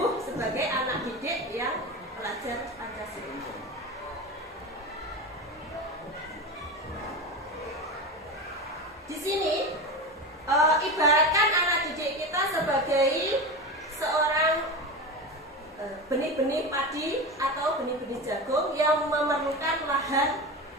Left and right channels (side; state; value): both; normal; correlation 0.24